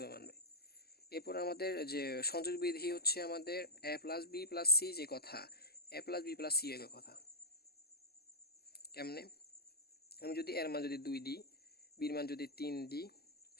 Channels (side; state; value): right; late; 0.46 ms